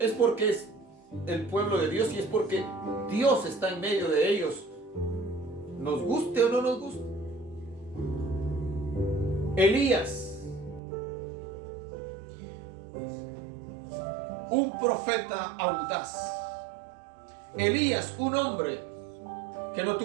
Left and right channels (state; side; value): drops out; left; at 10.8 s